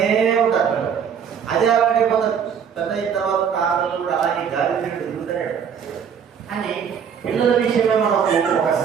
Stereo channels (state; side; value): quieter; left; 7.5 dB